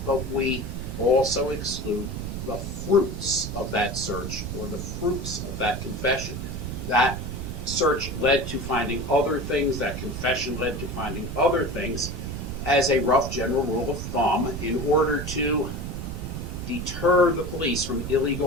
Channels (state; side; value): noise; right; rumble, 6 dB below the sound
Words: but we also exclude the fruits of that search or the fruits of that confession. That search led to finding other things, that confession led to finding other things. As a rough general rule of thumb, in order to deter the police from